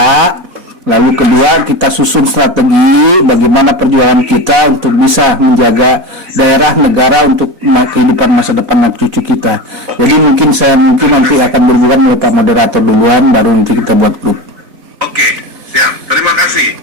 Lalu kedua, kita susun strategi bagaimana perjuangan kita untuk bisa menjaga daerah, negara untuk kehidupan masa depan anak cucu kita. Jadi mungkin nanti akan berhubungan dengan Pak moderator duluan, baru nanti kita buat grup. Oke, siap. Terima kasih.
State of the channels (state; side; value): late; left; 4.1 ms